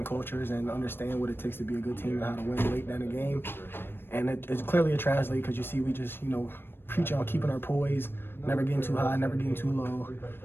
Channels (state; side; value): late; right; 0.10 ms